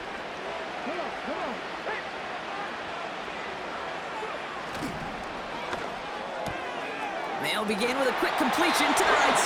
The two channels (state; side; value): identical; both; correlation 1.00